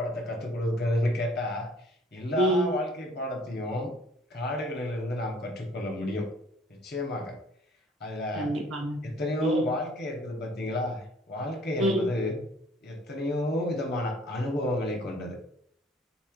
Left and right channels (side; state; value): both; normal; correlation 0.57